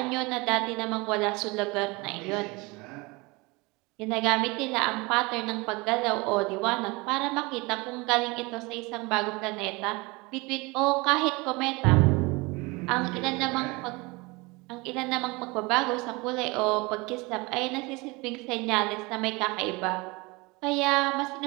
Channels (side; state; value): left; quieter; 25.2 dB